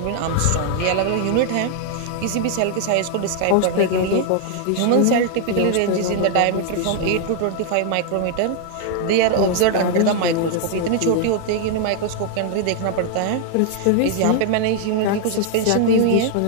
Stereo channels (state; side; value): different; both; correlation 0.00